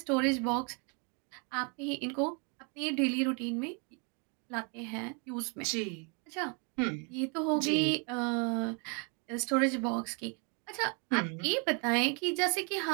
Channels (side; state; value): left; quieter; 35.1 dB